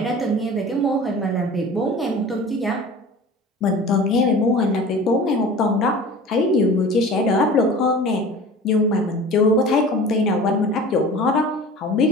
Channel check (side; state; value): both; normal; correlation 0.39